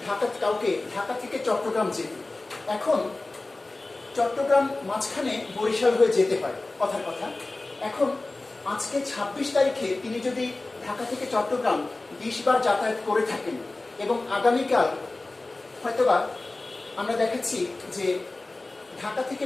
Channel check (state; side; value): quieter; right; 3.1 dB